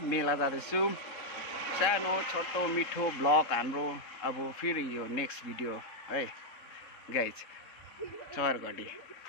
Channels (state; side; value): late; right; 3.7 ms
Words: मेला जाँदैछौँ। सानो छोटो मिठो ब्लग हाम्रो अब फेरि यो नेक्स्ट भिडियो है गाइस। चौरघडी